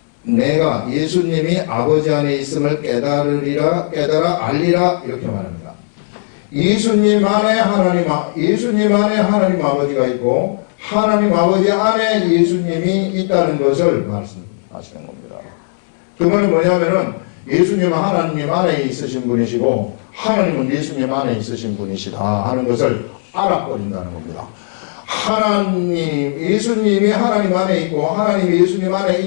내가 예수님이 아버지 안에 있음을 깨달아 알리라, 이렇게 말합니다. 예수님 안에 하나님 아버지가 있고 하나님 아버지 안에 예수님이 있다는 것을 말씀하시는 겁니다. 그 말은 뭐냐면은 예수님은 하나님 안에 있으신 분이시고 하나님은 예수님 안에 있으신 분이시다 하는 것을 알아버린다는 겁니다. 예수님이 하나님 안에 있고 하나님이 예수님 안에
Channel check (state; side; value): silent; right; 69 dB below the other